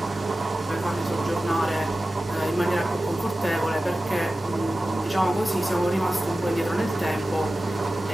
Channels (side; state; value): both; normal; correlation 0.95